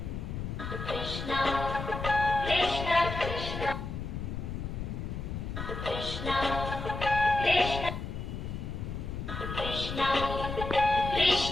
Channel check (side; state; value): left; noise; rumble, 5 dB below the sound